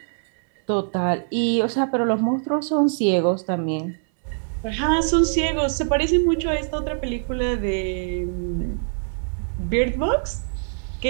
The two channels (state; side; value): silent; left; 63 dB below the other